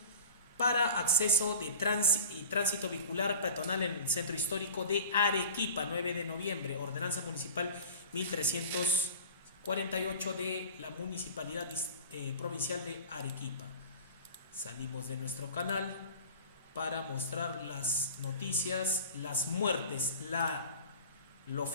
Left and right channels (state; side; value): inverted; both; correlation -0.39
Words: para acceso de tránsito vehicular peatonal en el centro histórico de Arequipa, 9 de noviembre, ordenanza municipal 1348 de la Municipalidad Provincial de Arequipa. Salimos de nuestro canal para mostrar las noticias, las muertes, lo